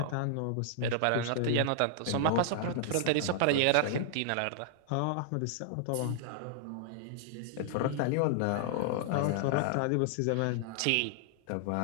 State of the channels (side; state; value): both; different; correlation -0.01